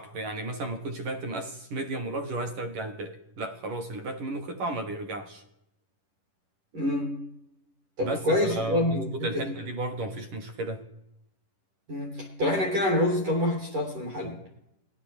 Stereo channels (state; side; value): late; left; 11 ms